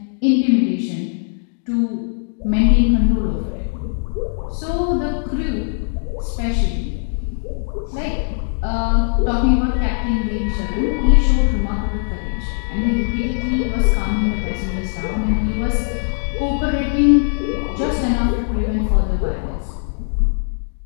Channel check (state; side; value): silent; right; digital silence